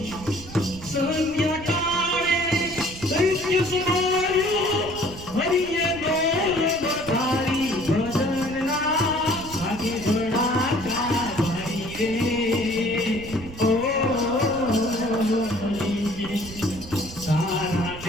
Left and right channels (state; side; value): noise; right; rumble, 15 dB below the sound